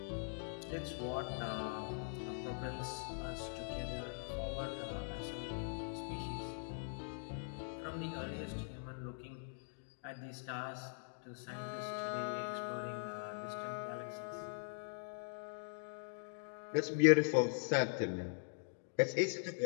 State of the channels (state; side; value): silent; right; digital silence